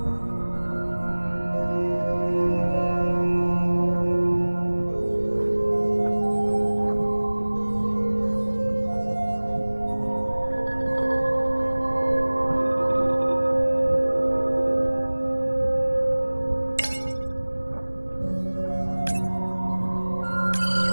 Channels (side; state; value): both; inverted; correlation -1.00